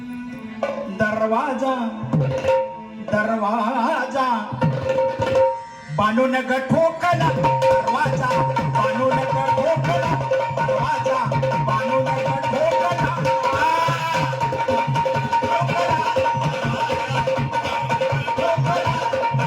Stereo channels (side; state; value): both; identical; correlation 1.00